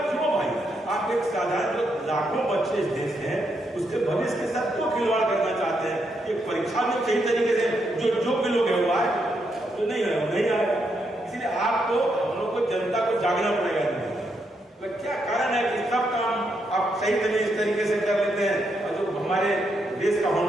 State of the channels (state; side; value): normal; both; correlation 0.79